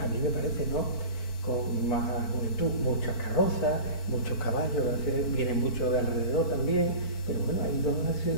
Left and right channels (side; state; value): right; late; 4.5 ms